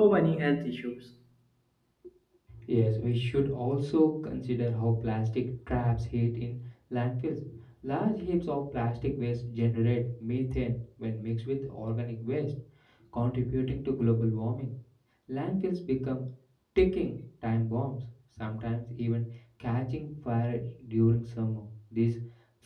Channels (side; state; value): both; identical; correlation 1.00